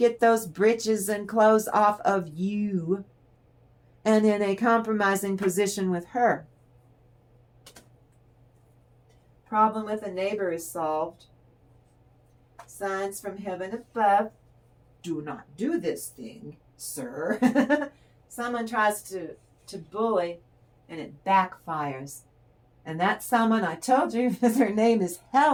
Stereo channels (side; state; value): both; identical; correlation 1.00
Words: those britches and clothes off of you and in a compromising position with her. Problem with a neighbor is solved. Signs from heaven above. Do not do this thing, sir. Someone tries to bully and it backfires. And that someone, I told you, her name is